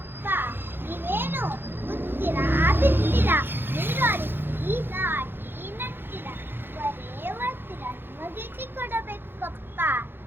ನೀವೇನು ಗೊತ್ತಿರಾ ಬಿತ್ತೀರಾ, ನೀರು ಹರಿಸಿ ನಾಟಿ ನಟ್ಟಿರ, ಬರೇ ಬರ್ತೀರ, ನಿಮಗೇಕೆ ಕೊಡಬೇಕು ಕಪ್ಪ?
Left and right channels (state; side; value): late; left; 0.10 ms